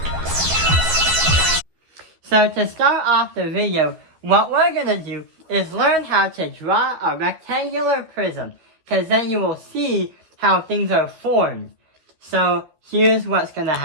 So to start off the video, what we're going to do is learn how to draw a rectangular prism, because then you will see how things are formed. So here's what's going to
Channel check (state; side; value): late; left; 12 ms